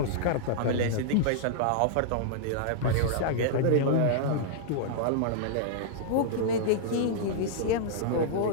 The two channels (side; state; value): both; different; correlation -0.02